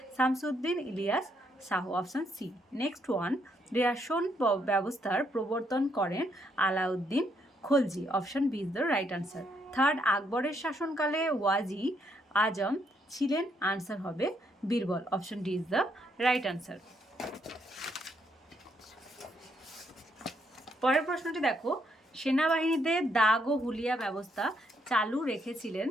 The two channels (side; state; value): both; normal; correlation 0.74